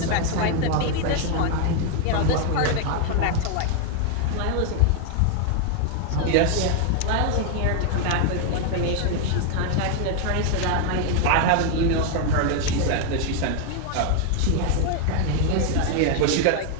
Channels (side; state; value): both; different; correlation 0.00